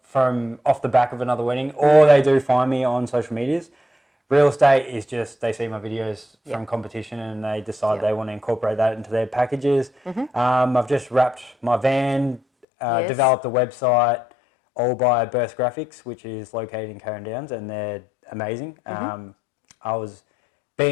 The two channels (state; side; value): drops out; right; at 12.7 s